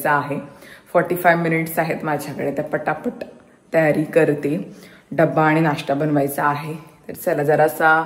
आहे. 45 मिनिट्स आहेत माझ्याकडे, तर पटापट तयारी करते. डब्बा आणि नाश्ता बनवायचा आहे. तर चला, जरासा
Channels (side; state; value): both; identical; correlation 1.00